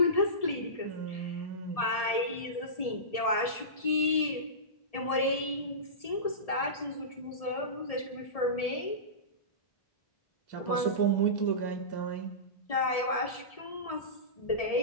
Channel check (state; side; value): late; right; 1.7 ms